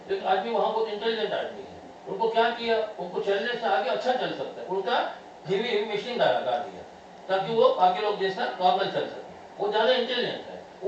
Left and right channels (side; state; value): both; identical; correlation 1.00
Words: एक आदमी वहाँ बहुत इंटेलिजेंट आदमी है, उनको क्या किया, उनको चलने से आगे अच्छा चल सकता है, उनका हेवी मशीन लगा दिया ताकि वो बाकी लोग जैसा नॉर्मल चल सके। वो ज़्यादा इंटेलिजेंट है,